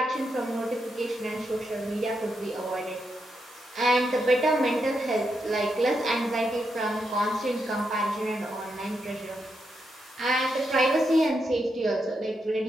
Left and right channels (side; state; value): both; normal; correlation 0.83